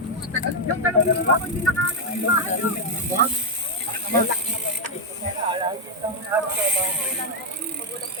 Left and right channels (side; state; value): both; normal; correlation 0.02